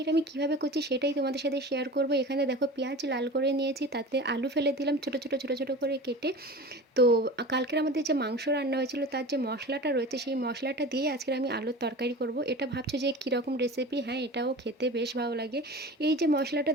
আমি কিভাবে করছি সেটাই তোমাদের সাথে শেয়ার করব। এখানে দেখো পেঁয়াজ লাল করে নিয়েছি, তাতে আলু ফেলে দিলাম ছোটো ছোটো ছোটো ছোটো করে কেটে। তো কালকের আমাদের যে মাংস রান্না হয়েছিল তার যে মশলাটা রয়েছে সেই মশলাটা দিয়ে আজকের আমি আলুর তরকারি করব। এটা ভাবছো যে কীরকম রেসিপি? হ্যাঁ, এটাও খেতে বেশ ভালো লাগে। এই যে মশলাটা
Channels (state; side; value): normal; both; correlation 0.35